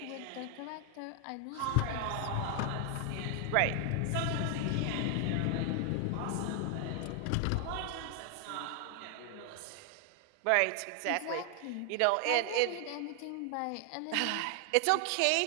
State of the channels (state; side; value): different; both; correlation 0.00